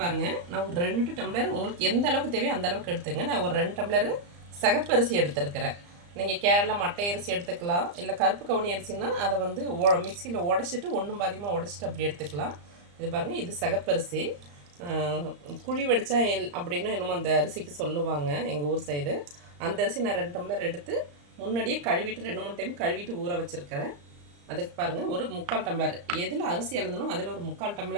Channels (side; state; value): left; late; 34 ms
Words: பாருங்கள், நான் ஒரு 2 டம்ளர் உங்களுக்கு எந்த அளவுக்கு தேவையோ அந்த அளவுக்கு எடுத்துங்க. நான் ஒரு 2 டம்ளர் சகப்பரிசி எடுத்துருக்கிறேன். நீங்கள் கேரளா மட்டை அரிசி எடுத்துக்கலாம், இல்லை கருப்பு கவுனி அரிசின்னா அதை மிக்சியில் உடச்சிட்டு ஒன்றும் பாதியமாக உடச்சிட்டு அப்படி எடுத்துக்கலாம். இது பாருங்கள், இது சகப்பரிசி. குழி வடித்தா அப்படின்னு என்னமோ அந்த அரிசிக்கு சொல்லுவாங்க எங்கள் ஊர் சைடு. அந்த அரிசி நான் 2 டம்ளர் எடுத்து முன்னாடியே கழுவிட்டு 2-3 டைம் கழுவிட்டு ஊற வச்சுருக்கிறேன். அதுக்கு பாருங்கள், ஒரு 3/4 டம்ளர் எதில் அரிசி எழுதணும் அதில் ஒரு 3/4